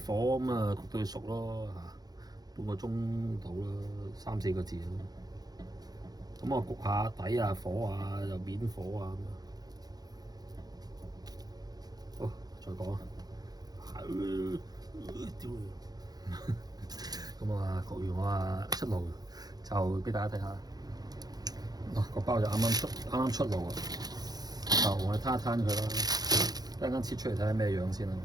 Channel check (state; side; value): late; left; 0.19 ms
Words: 火咁啊焗到佢熟咯半個鐘到啦，3-4個字咯。咁我焗下底啊、火啊、又面火啊咁好，再講啊。咁啊焗完我出爐就俾大家睇下。個包就啱啱出爐啊，就我哋攤一攤佢啦。一陣間切出嚟睇下咩樣先啦，